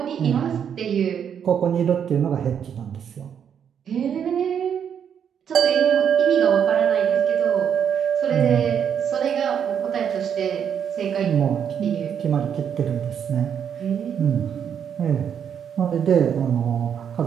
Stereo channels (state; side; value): quieter; left; 8.2 dB